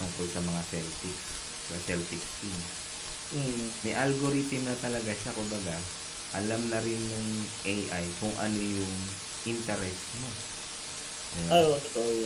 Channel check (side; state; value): both; identical; correlation 1.00